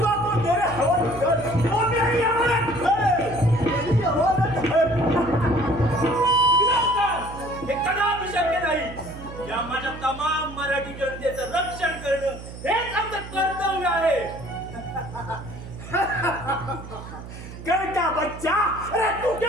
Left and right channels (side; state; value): right; noise; hum, 13 dB below the sound